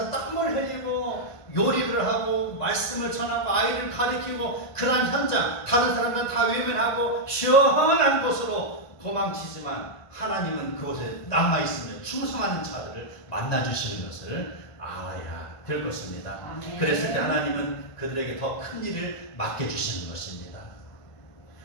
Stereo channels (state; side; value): late; right; 1.5 ms